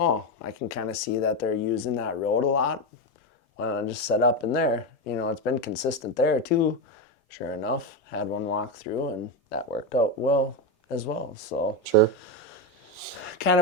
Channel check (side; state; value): both; normal; correlation 0.11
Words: I can kind of see that they're using that road a lot. Why don't I just set up in there? You know, it's been consistent there too. Sure enough, had one walk through and that worked out well as well. So Sure. kind